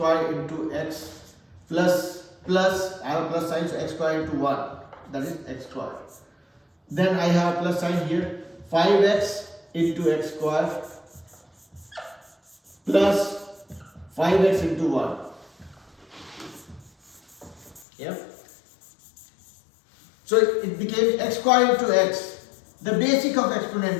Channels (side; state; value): right; drops out; at 17.9 s